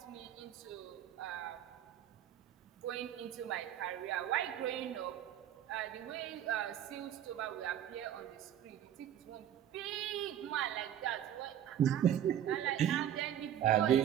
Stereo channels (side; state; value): left; quieter; 10.6 dB